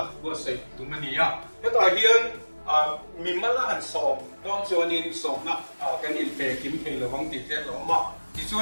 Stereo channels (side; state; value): both; inverted; correlation -1.00